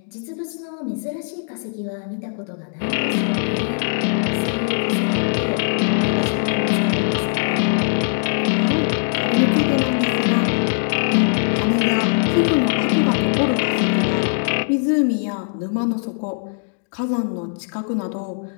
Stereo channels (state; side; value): silent; right; digital silence